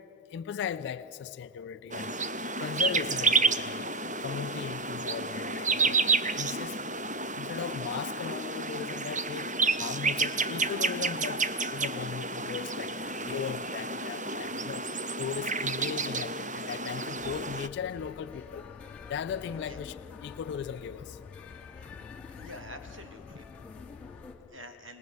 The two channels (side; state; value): both; normal; correlation 0.08